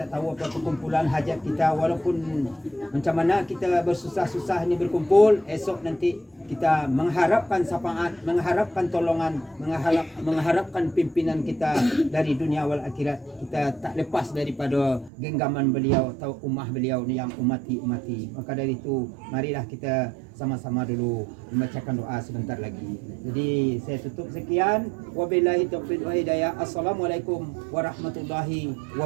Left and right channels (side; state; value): left; drops out; at 15.1 s